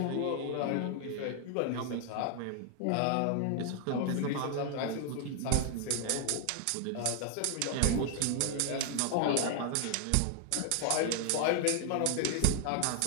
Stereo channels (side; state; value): both; different; correlation 0.00